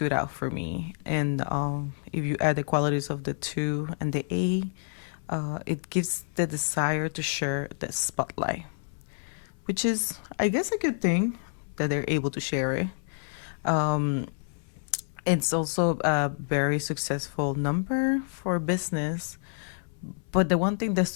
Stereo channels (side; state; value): right; silent; 59 dB below the other